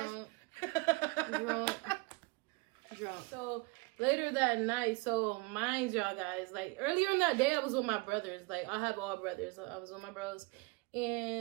Drunk. So later that night, so mind y'all guys, like earlier in that day, I was with my brothers. Like I have all brothers. So I was with my bros.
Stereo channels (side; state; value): left; quieter; 27.4 dB